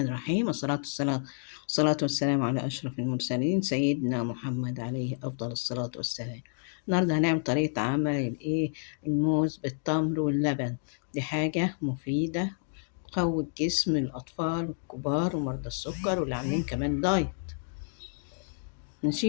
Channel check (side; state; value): right; silent; digital silence